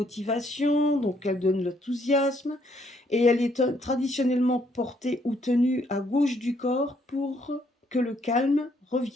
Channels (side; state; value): both; normal; correlation 0.70